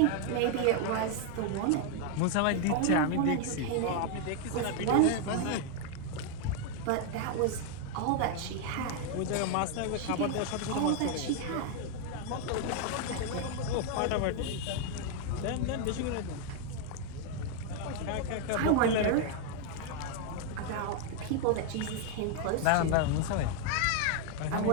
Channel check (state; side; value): different; both; correlation 0.00